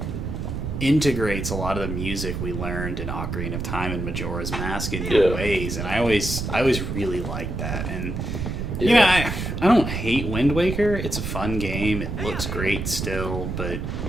integrates a lot of the music we learned in Ocarina of Time and Majora's Mask in new ways, and I always really liked that. And you know, I don't hate Wind Waker. It's a fun game. It looks great still, but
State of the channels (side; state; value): right; noise; rumble, 4 dB below the sound